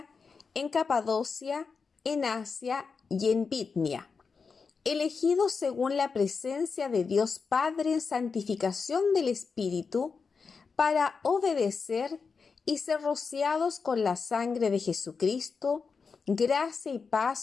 en Capadocia, en Asia y en Bitnia, elegidos según la presencia de Dios Padre en santificación del Espíritu, para obedecer y ser rociados con la sangre de Jesucristo, gracia y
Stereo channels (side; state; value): right; quieter; 5.1 dB